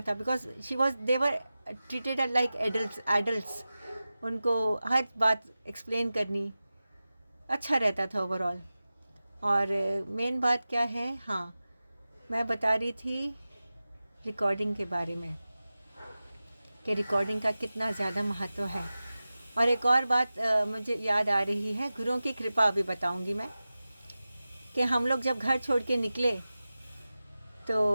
because she was never treated like adults. उनको हर बात एक्सप्लेन करनी, अच्छा रहता था ओवरऑल। और मेन बात क्या है, हाँ मैं बता रही थी रिकॉर्डिंग के बारे में कि रिकॉर्डिंग का कितना ज़्यादा महत्व है। और एक और बात मुझे याद आ रही है, गुरुओं की कृपा अभी बताऊंगी मैं, कि हम लोग जब घर छोड़ के निकले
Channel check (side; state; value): both; inverted; correlation -0.95